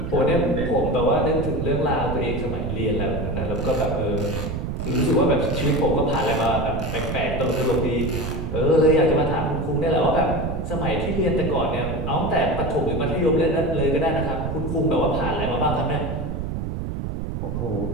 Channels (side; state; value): right; noise; rumble, 4 dB below the sound